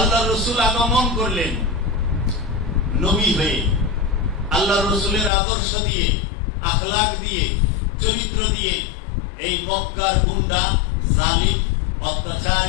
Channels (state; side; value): drops out; right; at 5.3 s